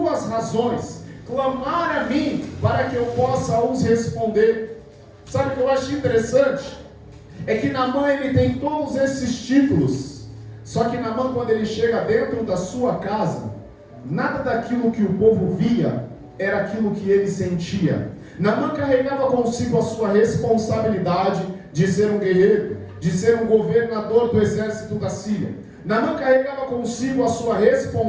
razões, clamar a mim para que eu possa os responder. Sabe o que eu acho interessante? É que Naamã, ele tem todos esses títulos, só que Naamã, quando ele chega dentro da sua casa, nada daquilo que o povo via era aquilo que ele sentia. Naamã carregava consigo a sua responsabilidade de ser um guerreiro, de ser um governador do exército da Síria. Naamã carregava consigo a sua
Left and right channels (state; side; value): identical; both; correlation 1.00